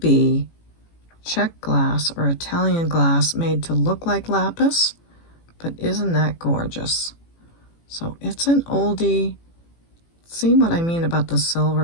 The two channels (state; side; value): late; right; 18 ms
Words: Czech glass or Italian glass made to look like lapis. But isn't that gorgeous? So it's an oldie. See what I mean about the